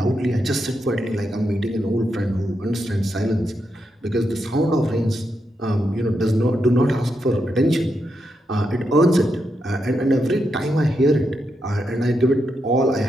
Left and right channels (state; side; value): normal; both; correlation 0.83